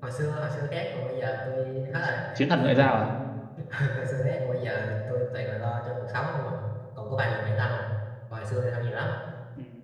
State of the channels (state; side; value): identical; both; correlation 1.00